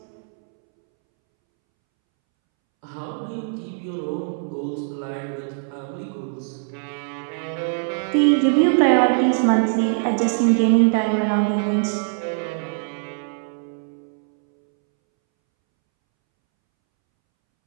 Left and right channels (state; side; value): silent; left; 64 dB below the other